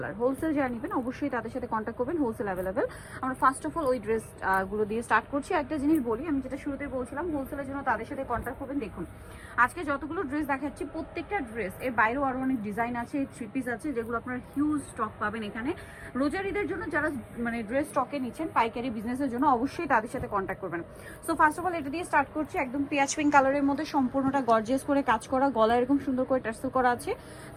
যারা নেবেন অবশ্যই তাদের সাথে কন্ট্যাক্ট করবেন, হোলসেল অ্যাভেলেবেল। আমরা ফার্স্ট অফ অল ওই ড্রেস গুলো দিয়ে স্টার্ট করছি। একটা জিনিস বলি, আমি যেটা শুরুতে বলছিলাম, হোলসেলের জন্য তাদের সাথে কন্ট্যাক্ট করবেন। দেখুন আজকে যতগুলো ড্রেস দেখাচ্ছি প্রত্যেকটা ড্রেস এর বাইরেও আরও অনেক ডিজাইন আছে, থ্রি পিস আছে, যেগুলো আপনার হিউজ স্টক পাবেন এখানে। রোজার ঈদের জন্য যারা ড্রেস স্টকে নিচ্ছেন পাইকারি বিজনেসের জন্য অবশ্যই তাদের সাথে কন্ট্যাক্ট করবেন। সো ফার্স্ট অফ অল এটা দিয়ে স্টার্ট করছি। একদম পেঁয়াজ পিঙ্ক কালারের মধ্যে সম্পূর্ণটা গর্জিয়াস করে কাজ করা, গলা এরকম সুন্দর করে টার্সেল করা আছে,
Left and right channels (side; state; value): both; identical; correlation 1.00